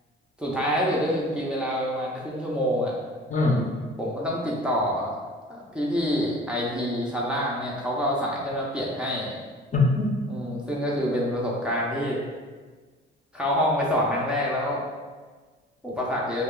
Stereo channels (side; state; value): both; normal; correlation 0.43